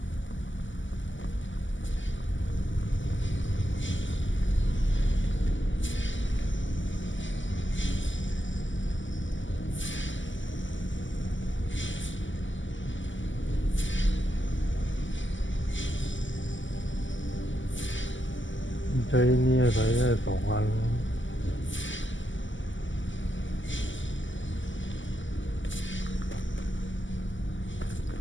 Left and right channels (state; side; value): late; right; 0.55 ms